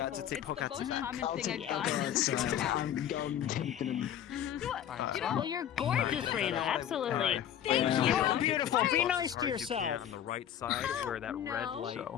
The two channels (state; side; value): quieter; right; 10.2 dB